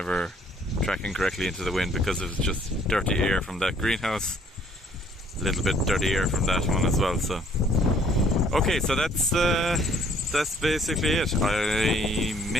tracking correctly into the wind because it was just dirty air from that greenhouse, a little bit dirty air from that one as well. So okay, so that's that's basically it. I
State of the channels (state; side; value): normal; both; correlation 0.61